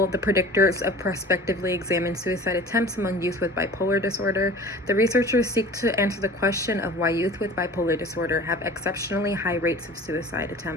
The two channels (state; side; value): normal; both; correlation 0.42